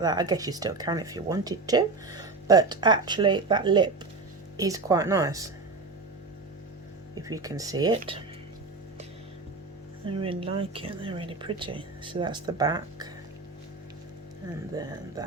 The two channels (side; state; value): left; quieter; 3.7 dB